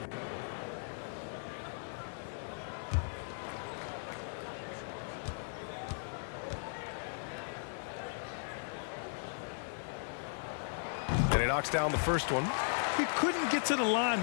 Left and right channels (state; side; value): silent; right; digital silence